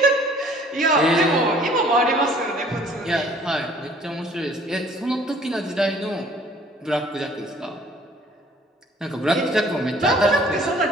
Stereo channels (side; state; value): both; normal; correlation 0.55